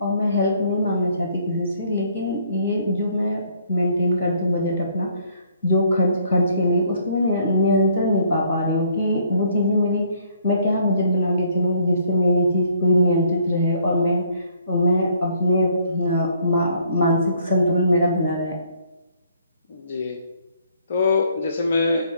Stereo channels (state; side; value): inverted; both; correlation -0.64